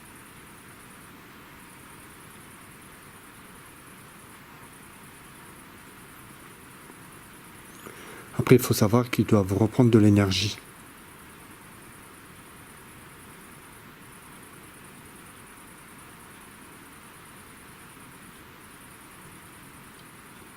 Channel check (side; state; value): both; identical; correlation 1.00